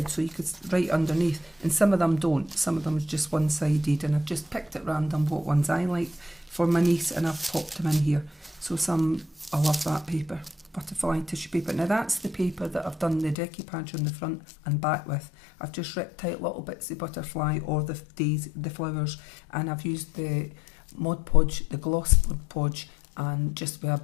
so you could write underneath. And some of them don't. Some of them is just one-sided, and I've just picked at random what ones I like for my niece, and I've popped them in here. So I love that paper. Butterfly tissue paper. Now that's the paper that I've done the decoupage on the front and back with. I've just ripped out little bits of butterfly or the flowers, and I've used the Mod Podge, the gloss Mod Podge, and just with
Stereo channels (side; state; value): right; drops out; at 13.4 s